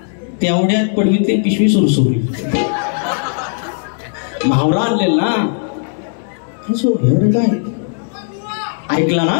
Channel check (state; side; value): silent; right; 69 dB below the other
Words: तेवढ्यात पडवीतली पिशवी सुरसुरली. म्हावरा आणलेल ना काय ऐकला ना